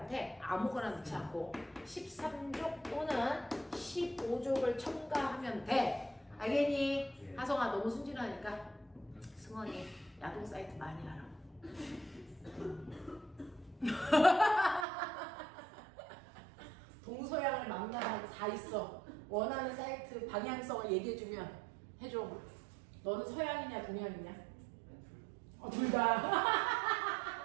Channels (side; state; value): left; drops out; at 14.9 s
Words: 아무거나 넣지 않고 13족 또는 15족을 첨가하면 돼. 알겠니? 하성아, 너무 순진하니까 승원이 야동 사이트 많이 하라. 동서양을 망라하고 다 있어. 원하는 사이트 방향성을 얘기해주면 해줘. 너는 서양이냐 동양이냐? 둘 다.